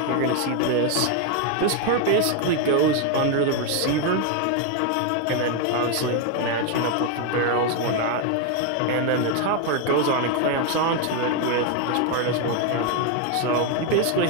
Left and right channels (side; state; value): both; different; correlation 0.01